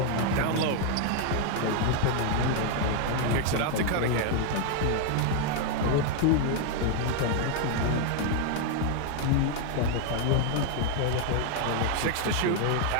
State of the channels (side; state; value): both; different; correlation 0.00